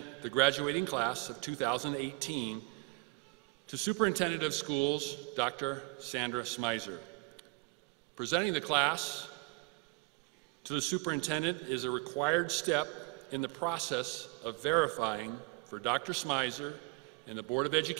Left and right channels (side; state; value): left; quieter; 29.3 dB